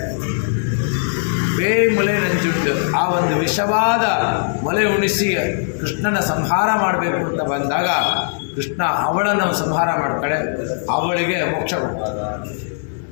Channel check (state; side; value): silent; right; digital silence